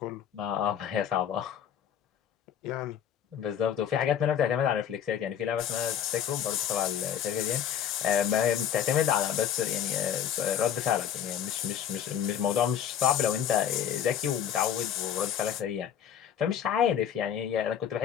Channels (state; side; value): quieter; right; 9.3 dB